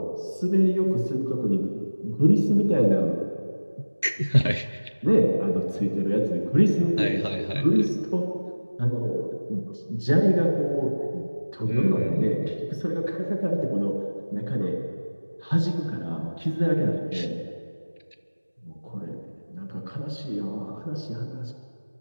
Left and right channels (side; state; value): both; inverted; correlation -1.00